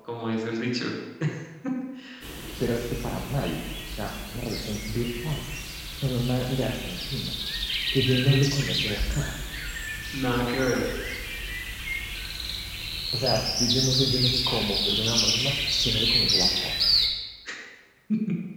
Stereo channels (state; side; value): identical; both; correlation 1.00